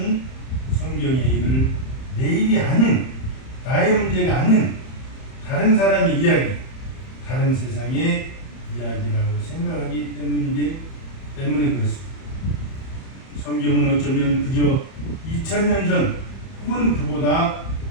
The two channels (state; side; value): late; right; 31 ms